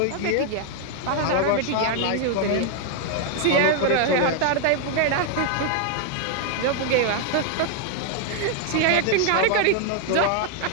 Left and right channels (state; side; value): different; both; correlation 0.00